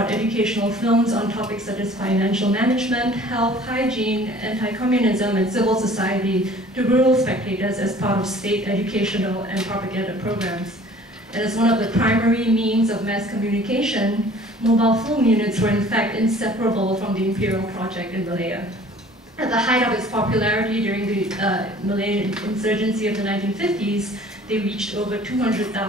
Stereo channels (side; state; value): both; normal; correlation 0.50